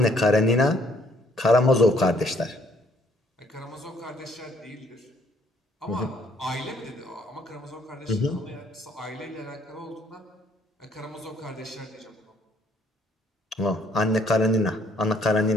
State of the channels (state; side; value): normal; both; correlation 0.64